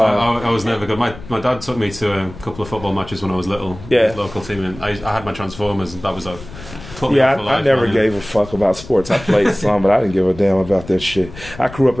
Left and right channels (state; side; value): noise; left; rumble, 15 dB below the sound